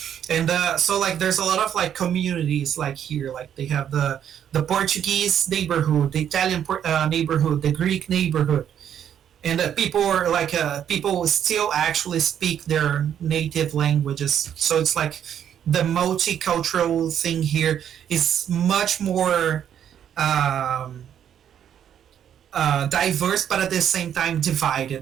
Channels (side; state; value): left; quieter; 9.4 dB